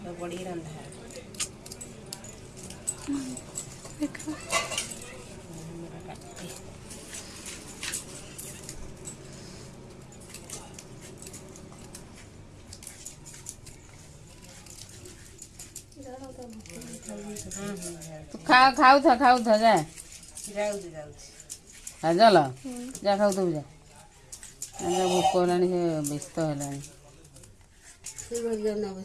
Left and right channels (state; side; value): identical; both; correlation 1.00